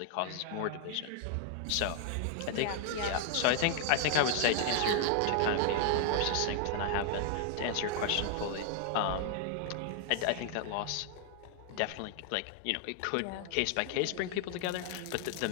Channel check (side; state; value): both; different; correlation 0.00